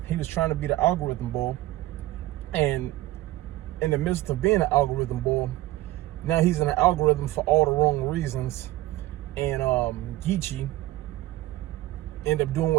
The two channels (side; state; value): left; quieter; 16.6 dB